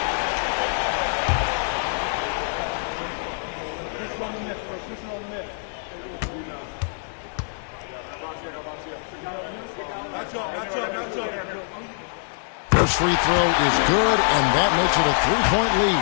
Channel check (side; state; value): right; silent; digital silence